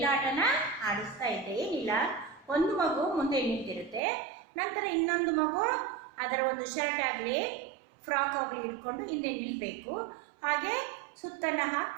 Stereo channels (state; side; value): drops out; left; at 4.0 s